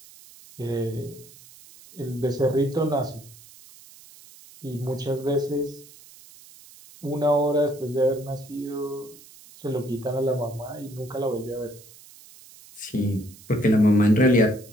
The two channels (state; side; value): noise; right; hiss, 22 dB below the sound